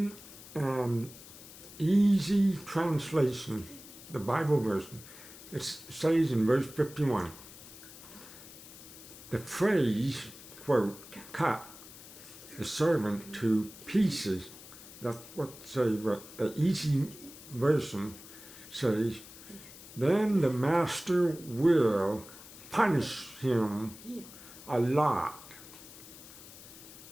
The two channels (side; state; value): left; noise; hiss, 17 dB below the sound